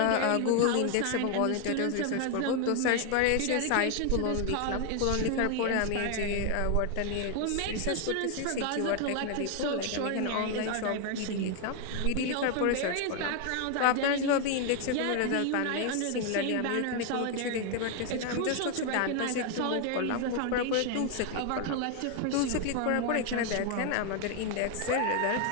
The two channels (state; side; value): different; both; correlation 0.00